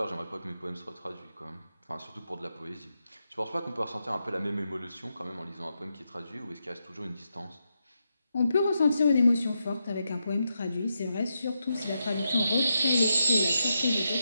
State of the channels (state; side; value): inverted; both; correlation -0.85